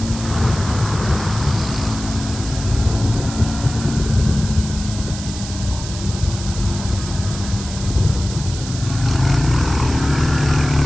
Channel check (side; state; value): right; noise; hiss, 11 dB below the sound